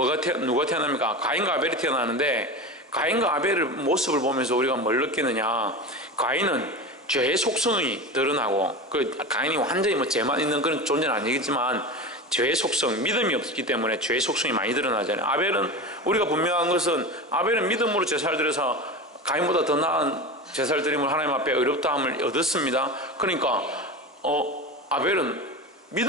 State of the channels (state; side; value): normal; both; correlation 0.27